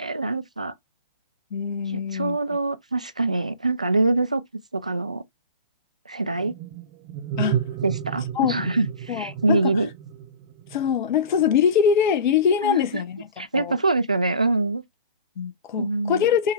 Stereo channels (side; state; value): both; inverted; correlation -0.42